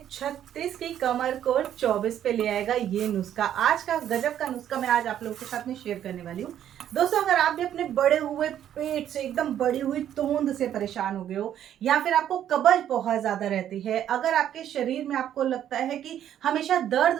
36 की कमर को 24 पे ले आएगा ये नुस्खा। आज का गजब का नुस्खा मैं आज आप लोगों के साथ में शेयर करने वाली हूँ। दोस्तों, अगर आप भी अपने बड़े हुए पेट से, एकदम बड़ी हुई तोंद से परेशान हो गए हो, या फिर आपको कब्ज बहुत ज्यादा रहती है, अगर आपके शरीर में आपको लगता है कि हमेशा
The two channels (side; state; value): left; quieter; 10.6 dB